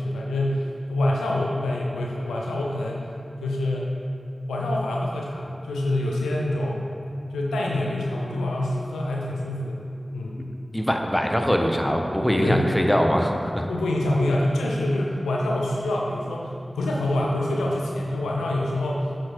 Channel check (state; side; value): normal; both; correlation 0.94